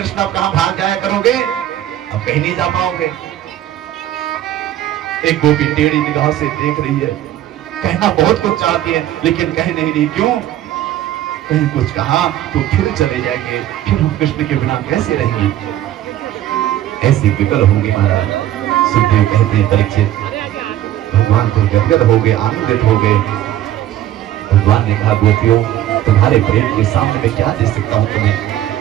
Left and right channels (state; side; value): quieter; left; 12.6 dB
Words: अब कहां भाग जाया करोगे? अब कहीं नहीं जा पाओगे। एक गोपी टेढ़ी निगाह से देख रही है, कहना बहुत कुछ चाहती है लेकिन कह नहीं रही। क्यों? कहीं कुछ कहा तो फिर चले जाएंगे, फिर हम कृष्ण के बिना कैसे रहेंगे? ऐसी विकल होंगी महाराज। सुखदेव कहते हैं परीक्षित भगवान को गदगद हो गए, आनंदित हो गए। भगवान ने कहा गोपियों तुम्हारे प्रेम के सामने मैं क्या दे सकता हूँ तुम्हें,